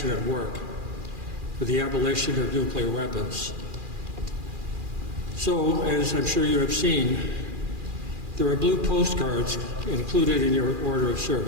work for the abolition of nuclear weapons. So, as I'm sure you have seen, there are blue postcards included in your order of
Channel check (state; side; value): late; left; 2.4 ms